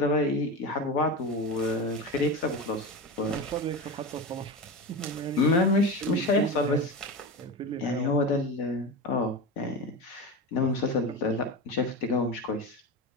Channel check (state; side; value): normal; both; correlation 0.23